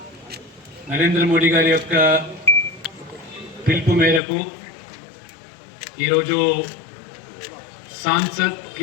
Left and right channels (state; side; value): drops out; right; at 4.2 s